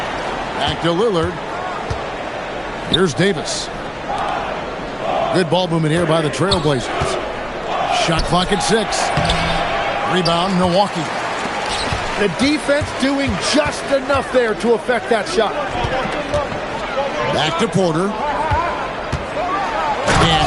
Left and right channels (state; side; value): identical; both; correlation 1.00